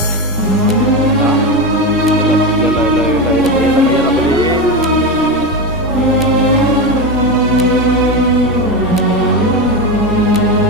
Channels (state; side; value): normal; both; correlation 0.15